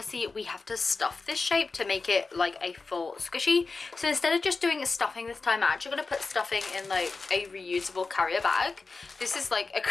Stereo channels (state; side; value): quieter; right; 4.1 dB